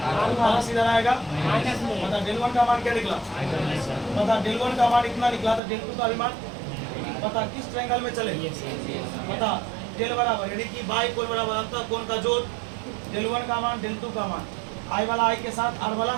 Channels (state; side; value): drops out; left; at 5.6 s